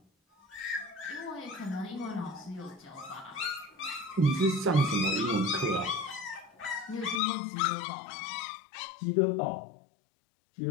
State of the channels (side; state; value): right; drops out; at 7.2 s